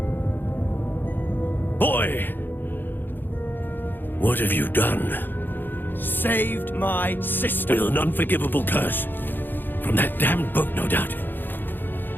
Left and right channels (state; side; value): late; right; 0.094 ms